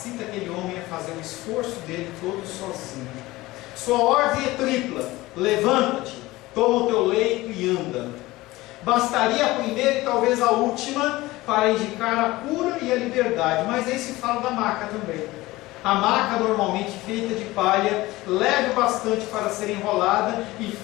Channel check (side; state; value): right; quieter; 19.0 dB